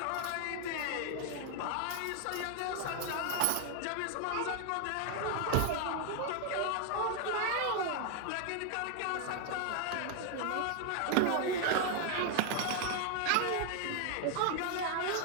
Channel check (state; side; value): different; both; correlation 0.00